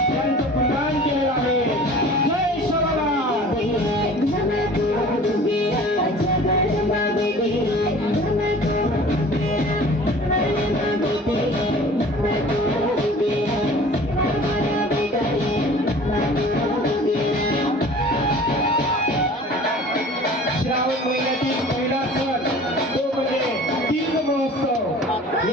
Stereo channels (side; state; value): both; normal; correlation 0.45